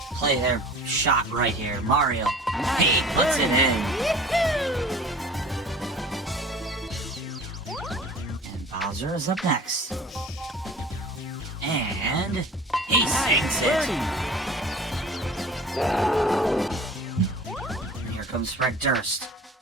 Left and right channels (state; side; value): normal; both; correlation 0.43